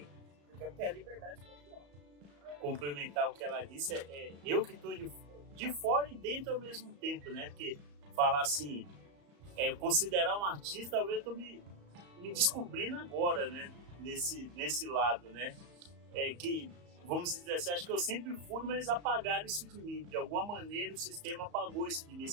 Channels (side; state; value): left; late; 34 ms